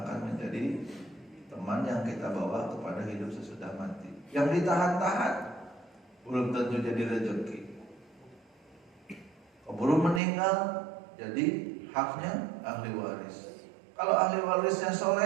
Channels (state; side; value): drops out; left; at 10.2 s